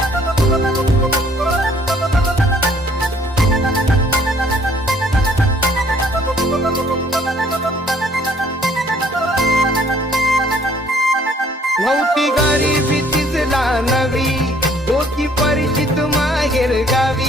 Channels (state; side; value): normal; both; correlation 0.60